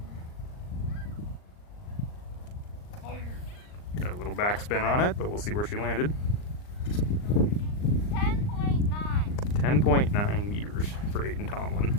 Got a little backspin on it, but we'll see where she landed. 10.9 meters for Aiden Tomlin.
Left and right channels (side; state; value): right; late; 39 ms